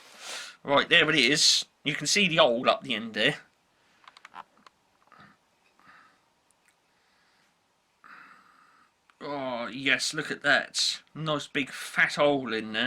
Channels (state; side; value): identical; both; correlation 1.00